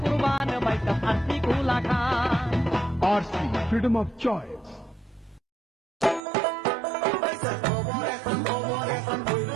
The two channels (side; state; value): left; drops out; at 6.2 s